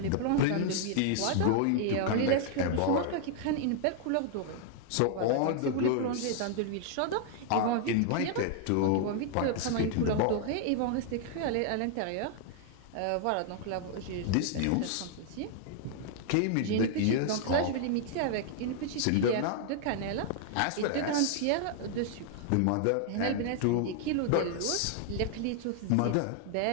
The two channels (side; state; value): both; different; correlation 0.00